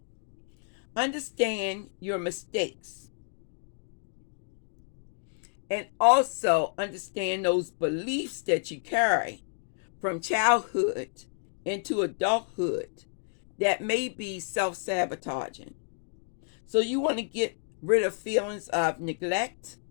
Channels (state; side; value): silent; right; digital silence